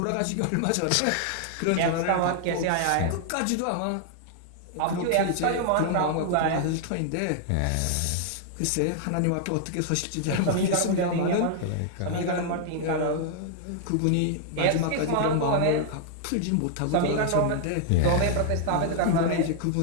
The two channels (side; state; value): both; different; correlation 0.00